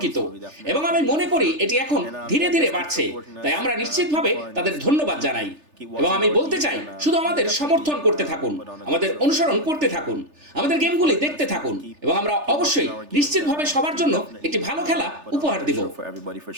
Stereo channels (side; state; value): left; late; 3.4 ms